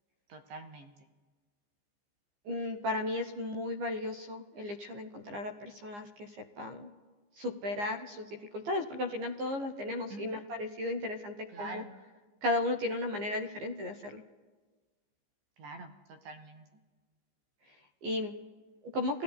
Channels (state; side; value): late; left; 15 ms